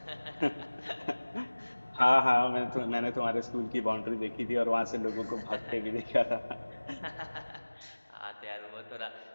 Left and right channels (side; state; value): both; inverted; correlation -1.00